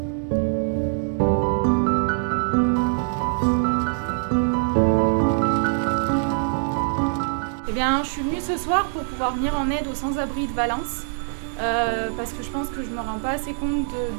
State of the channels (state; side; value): silent; left; digital silence